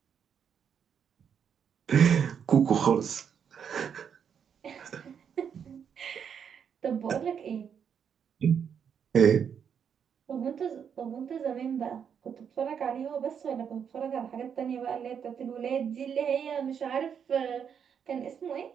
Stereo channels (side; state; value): left; quieter; 7.6 dB